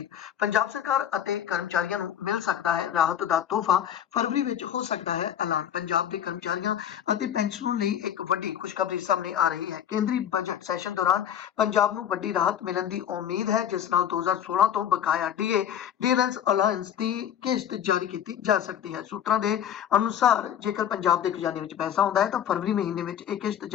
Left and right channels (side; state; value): right; quieter; 9.7 dB